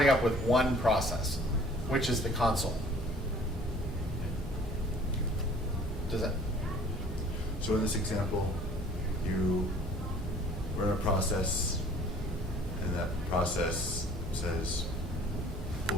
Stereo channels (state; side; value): normal; both; correlation 0.52